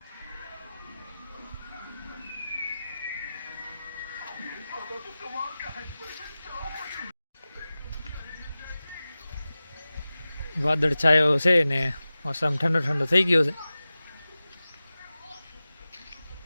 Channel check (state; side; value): inverted; both; correlation -0.96